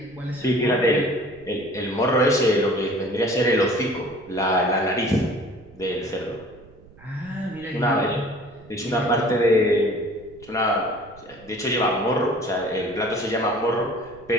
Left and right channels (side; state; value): right; noise; rumble, 24 dB below the sound